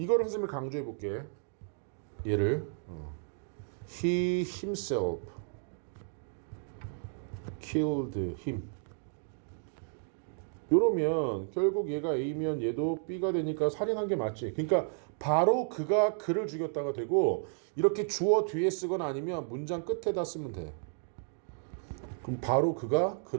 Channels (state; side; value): silent; left; 56 dB below the other